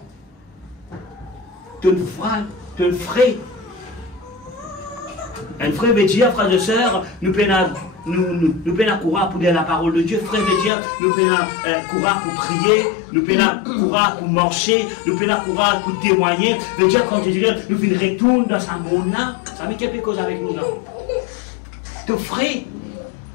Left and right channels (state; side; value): drops out; right; at 10.7 s